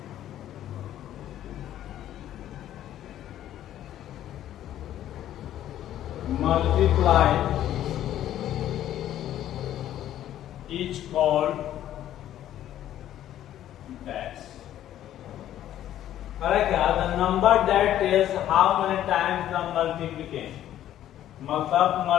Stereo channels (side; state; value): right; quieter; 12.1 dB